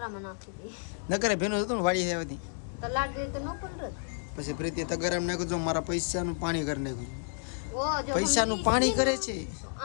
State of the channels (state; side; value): silent; right; digital silence